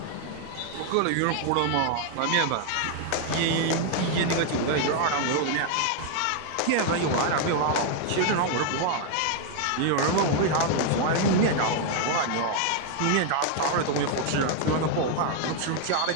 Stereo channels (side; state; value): both; different; correlation 0.00